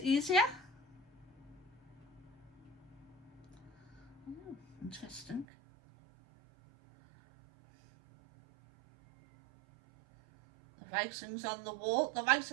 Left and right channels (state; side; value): drops out; left; at 5.5 s